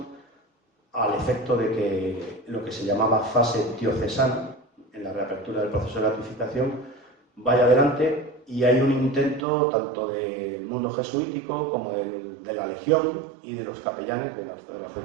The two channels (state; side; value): drops out; left; at 9.5 s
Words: al efecto de que lo que se llamaba fase diocesana, en la reapertura del proceso de beatificación, vaya adelante, y hay un intento tanto del mundo jesuítico como de la Legión y de los capellanes del